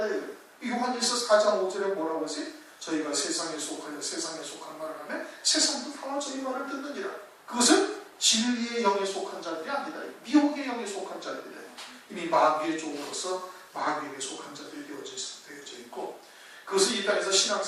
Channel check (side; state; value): both; identical; correlation 1.00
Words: 돼요. 요한일서 4장 5절에 뭐라고 하세요? 저희가 세상에 속하여 세상에 속한 말을 하면 세상도 다 저희 말을 듣느니라. 그것은 진리의 영에 속한 자들이 아니다. 미혹의 영에 속한 자들이다. 이미 마귀의 종으로서 마귀에게 속한 자들이 되어져 있고 그것을 이 땅에서